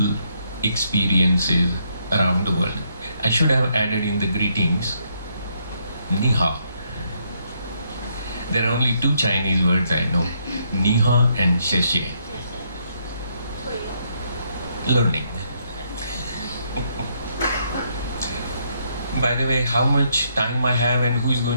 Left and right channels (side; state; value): both; inverted; correlation -0.74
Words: experiences around the world. I should have added in the greetings, Ni hao. There are only two Chinese words I know, Ni hao and Xie xie. Learning. By the way, how much time I have and who is